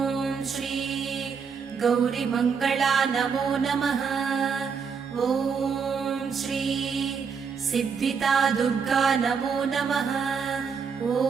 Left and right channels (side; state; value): left; quieter; 6.1 dB